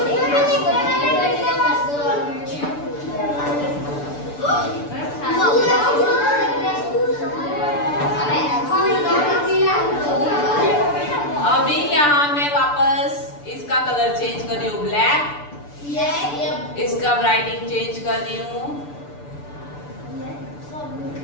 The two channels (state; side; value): late; right; 6.9 ms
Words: अभी यहाँ मैं वापस इसका कलर चेंज कर रही हूँ ब्लैक। इसका राइटिंग चेंज कर रही हूँ।